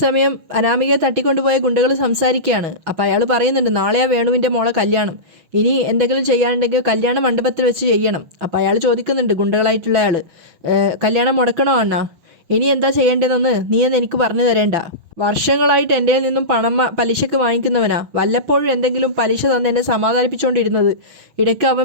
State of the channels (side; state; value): left; late; 6.1 ms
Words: അനാമികയെ തട്ടിക്കൊണ്ടുപോയ ഗുണ്ടകൾ സംസാരിക്കുകയാണ്. അപ്പോൾ അയാൾ പറയുന്നുണ്ട്, നാളെയാ വേണുവിൻ്റെ മോളെ കല്യാണം, ഇനി എന്തെങ്കിലും ചെയ്യാനുണ്ടെങ്കിൽ കല്യാണ മണ്ഡപത്തിൽ വെച്ച് ചെയ്യണം. അപ്പോൾ അയാൾ ചോദിക്കുന്നുണ്ട്, ഗുണ്ടകളായിട്ടുള്ള അയാൾ, കല്യാണം മുടക്കണോ അണ്ണാ? ഇനി എന്താ ചെയ്യേണ്ടതെന്ന് നീ എന്ന് എനിക്ക് പറഞ്ഞു തരേണ്ട. വർഷങ്ങളായിട്ട് എൻ്റെ നിന്നും പണം പലിശക്ക് വാങ്ങിക്കുന്നവനാ. വല്ലപ്പോഴും എന്തെങ്കിലും പലിശ തന്ന് എന്നെ സമാധാനിപ്പിച്ചുകൊണ്ടിരുന്നത്. ഇടയ്ക്ക്